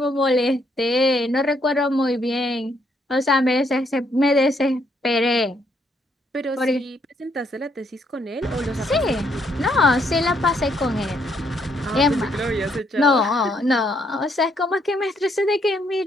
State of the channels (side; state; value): both; normal; correlation 0.72